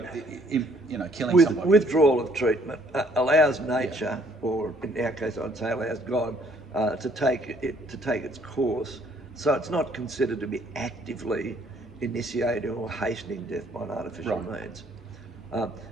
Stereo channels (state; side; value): normal; both; correlation 0.63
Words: killing somebody. Withdrawal of treatment allows nature, or in our case, I'd say allows God, to take its course. So it's not considered to be actively initiating or hastening death by an artificial means.